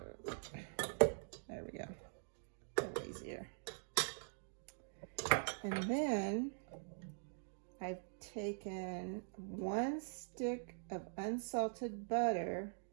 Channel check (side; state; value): left; silent; digital silence